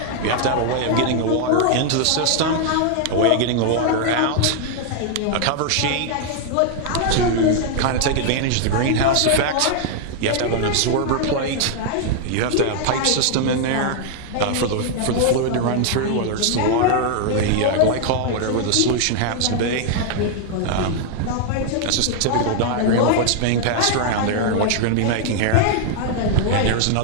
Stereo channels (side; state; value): both; different; correlation 0.00